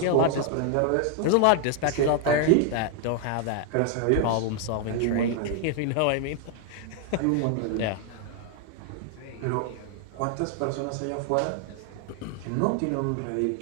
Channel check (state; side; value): different; both; correlation 0.00